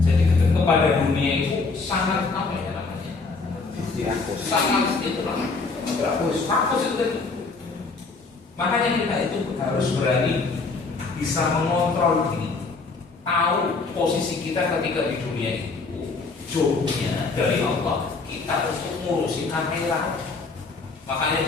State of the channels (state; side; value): quieter; right; 4.1 dB